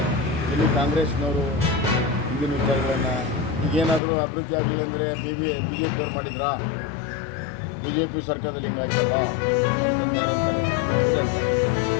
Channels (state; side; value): drops out; right; at 4.0 s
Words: ಇಲ್ಲಿ ಕಾಂಗ್ರೆಸ್ನವರು ಹಿಂದಿನ ವಿಚಾರಗಳನ್ನು ಈಗೇನಾದರೂ ಅಭಿವೃದ್ಧಿ ಆಗಲಿಲ್ಲ ಅಂದರೆ ಬಿ ಜೆ ಪಿಯವ್ರು ಮಾಡಿದ್ರಾ, ಬಿ ಜೆ ಪಿ ಸರ್ಕಾರದಲ್ಲಿ ಹಿಂಗಾಯ್ತಲ್ಲ ಅಂತಂದು ಯಾರು ಅಂತಾರೆ, ಇವರೇ ಅಂತಾರೆ.